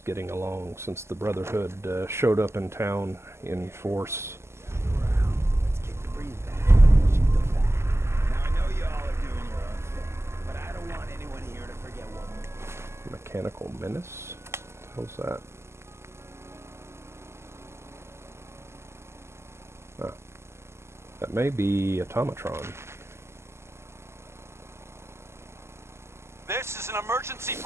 getting along since the Brotherhood showed up in town in force. Mechanical Menace? What the hell's that? Ah, that may be Automatron. This is an emergency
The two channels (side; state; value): left; late; 0.13 ms